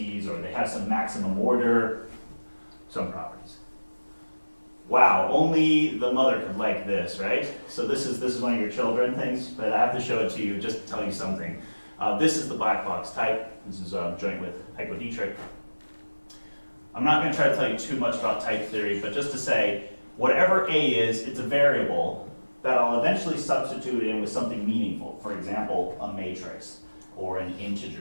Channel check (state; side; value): inverted; both; correlation -1.00